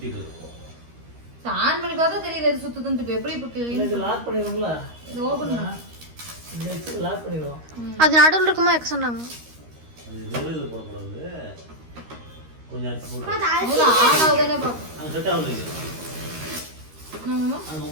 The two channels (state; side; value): late; left; 13 ms